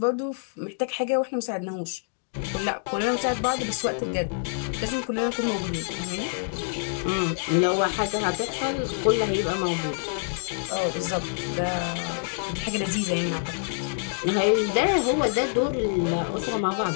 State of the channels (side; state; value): right; silent; digital silence